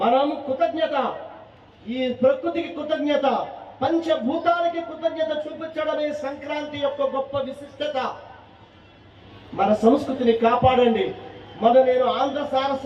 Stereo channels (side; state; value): both; identical; correlation 1.00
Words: మనం కృతజ్ఞత, ఈ ప్రకృతికి కృతజ్ఞత, పంచభూతాలకి కృతజ్ఞత చూపించడమే సంక్రాంతి యొక్క గొప్ప విశిష్టత. మన సంస్కృతిని కాపాడండి. నేను ఆంధ్ర